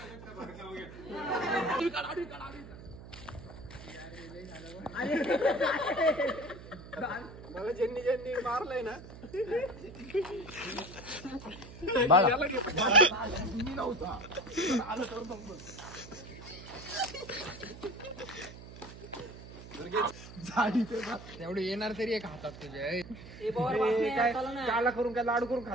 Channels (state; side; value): noise; right; hum, 15 dB below the sound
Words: मला ज्यांनी ज्यांनी मारलंय ना तेवढे येणार तरी एक हातात तुझ्या काला करून काय लाडू करून